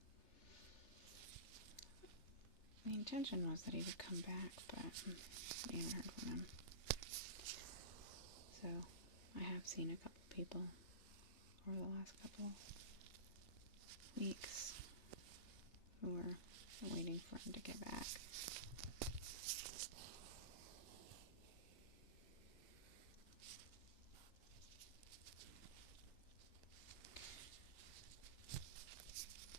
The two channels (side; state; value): right; late; 3.3 ms